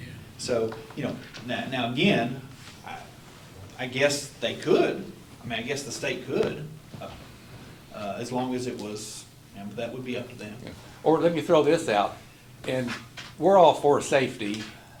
So, now again, I guess they could. I mean, I guess the state could, as long as it was, but that would be up to them. Yeah. Or let me throw this out, and we're all for safety.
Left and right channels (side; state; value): both; identical; correlation 1.00